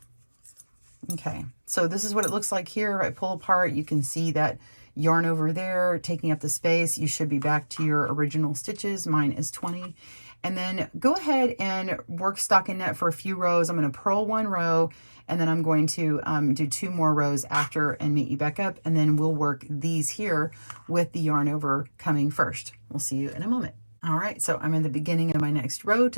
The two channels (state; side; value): inverted; both; correlation -1.00